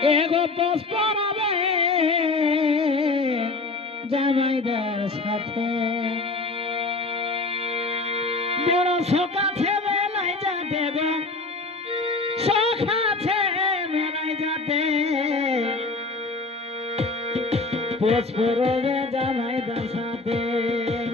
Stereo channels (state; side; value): quieter; right; 3.6 dB